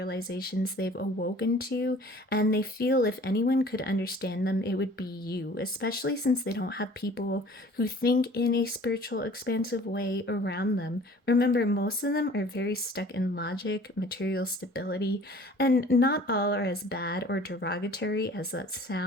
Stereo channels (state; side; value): normal; both; correlation 0.49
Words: they've awoken to, and they feel if anyone could understand them, it would be you, especially since they don't have people who think in a spiritual, expansive way around them. Remember, most of them are very stuck in logic, material stability, and not all are as bad or derogatory as that